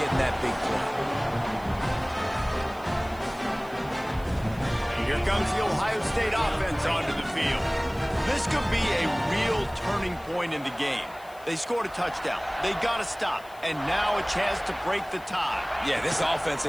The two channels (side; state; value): left; noise; hiss, 24 dB below the sound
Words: getting that big play. Here comes the Ohio State offense onto the field. This could be a real turning point in the game. They scored a touchdown. They got to stop. And now a chance to break the tie. Yeah, this offense